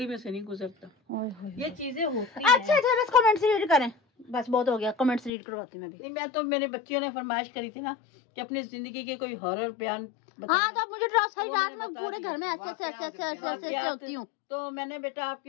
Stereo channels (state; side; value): drops out; right; at 5.3 s